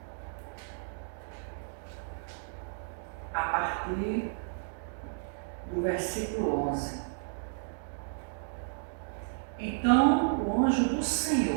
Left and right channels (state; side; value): silent; left; digital silence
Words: A partir do versículo 11. Então o anjo do